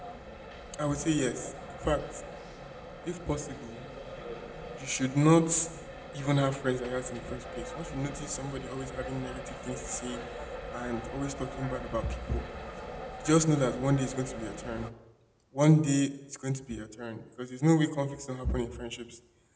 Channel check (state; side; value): identical; both; correlation 1.00